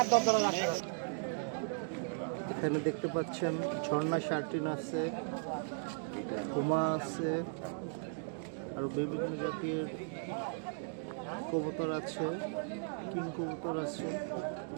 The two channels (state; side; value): silent; left; digital silence